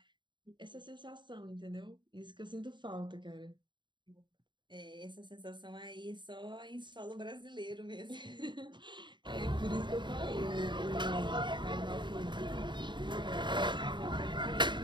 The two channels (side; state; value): left; late; 0.22 ms